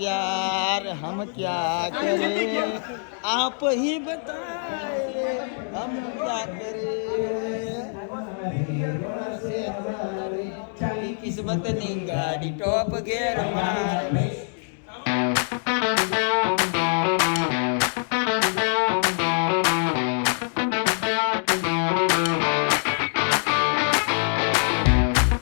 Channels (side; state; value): right; silent; digital silence